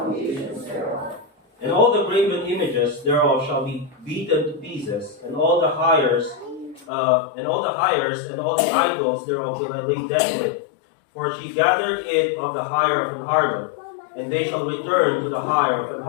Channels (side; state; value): right; drops out; at 6.9 s